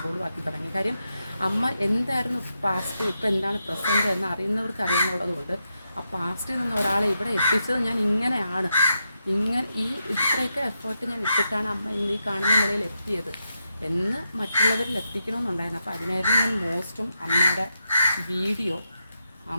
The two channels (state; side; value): inverted; both; correlation -0.85